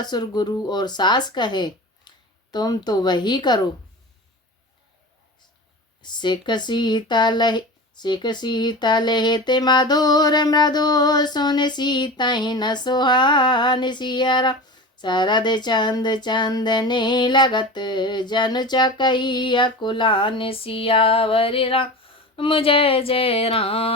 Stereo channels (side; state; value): both; normal; correlation 0.31